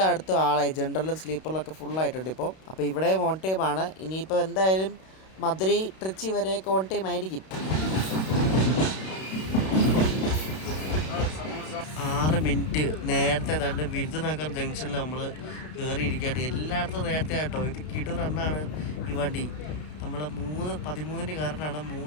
ആളായി, ജനറലും സ്ലീപ്പറിലൊക്കെ ഫുള്ളായിട്ടുണ്ട് ഇപ്പോൾ. അപ്പോൾ ഇവിടെ ഓൺ ടൈമാണ്. ഇനിയിപ്പോൾ എന്തായാലും മധുരൈ ട്രിച്ചി വരെയൊക്കെ ഓൺ ടൈം ആയിരിക്കും. 6 മിനിറ്റ് നേരത്തെ തന്നെ വിരുദനഗർ ജംഗ്ഷനിൽ നമ്മൾ കയറിയിരിക്കുകയാണ്. എല്ലായിടത്തും നേരത്തെ ആട്ടോ. ഇത് കിടു റണ്ണാണ് ഈ വണ്ടി. നമ്മൾ 3:13 കയറിനാണ്,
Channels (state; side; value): late; right; 32 ms